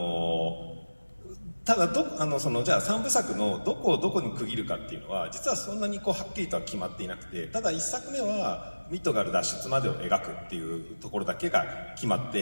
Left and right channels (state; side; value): inverted; both; correlation -1.00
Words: ただじゃあ3部作のどこをどこに区切るかっていうのは実はそんなにはっきりとは決まっていなくて、ただ1作目はミッドガル脱出までを描くっていうところだけが決まっ